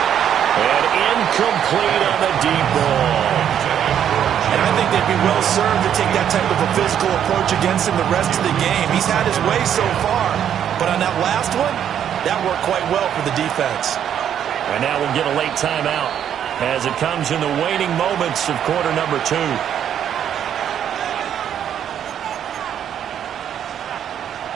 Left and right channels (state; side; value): quieter; left; 9.5 dB